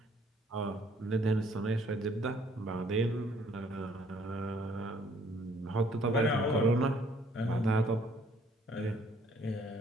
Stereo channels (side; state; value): both; normal; correlation 0.62